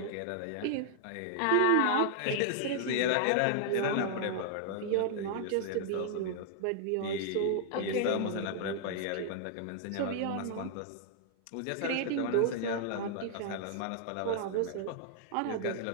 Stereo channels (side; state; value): both; different; correlation -0.01